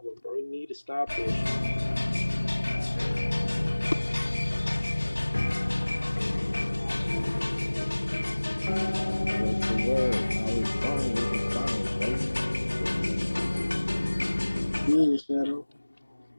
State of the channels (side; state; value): both; inverted; correlation -1.00